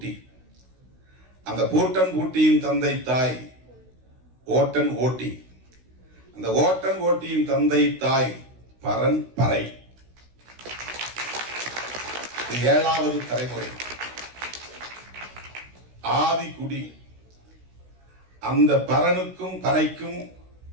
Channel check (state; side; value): late; left; 16 ms